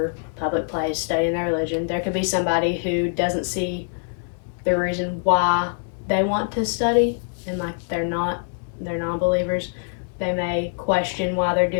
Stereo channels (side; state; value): right; silent; 63 dB below the other